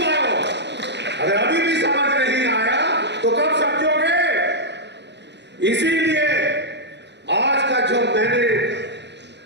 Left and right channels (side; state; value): left; late; 0.50 ms